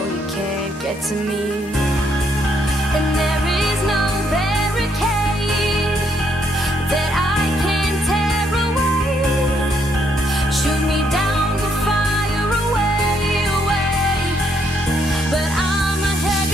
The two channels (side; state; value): both; normal; correlation 0.72